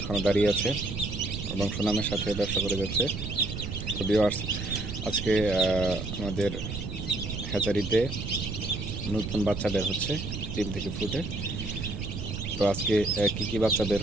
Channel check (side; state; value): right; noise; rumble, 6 dB below the sound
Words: দাঁড়িয়ে আছে এবং সুনামের সাথে ব্যবসা করে যাচ্ছে। তো ভিউয়ার্স, আজকে আমাদের হ্যাচারিতে নতুন বাচ্চা বের হচ্ছে ডিম থেকে ফুটে। তো আজকে কি কি বাচ্চা বের